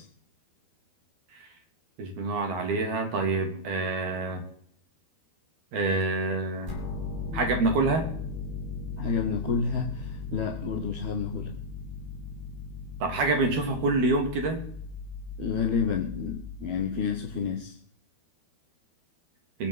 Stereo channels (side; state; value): left; late; 12 ms